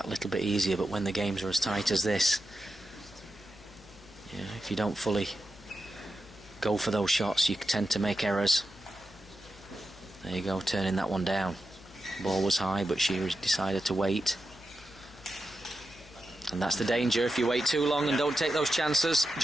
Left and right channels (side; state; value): left; noise; hum, 22 dB below the sound